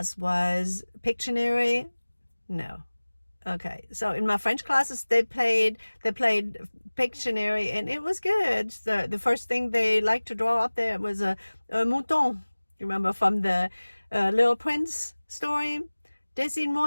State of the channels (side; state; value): both; inverted; correlation -1.00